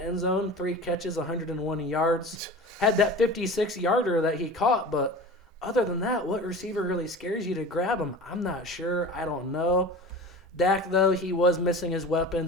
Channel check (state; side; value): normal; both; correlation 0.36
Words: zone, 3 catches, 101 yards. Had that 56-yarder that he caught, but other than that, what receiver really scares you to grab him? I'm not sure. I don't know. Dak, though, he was missing his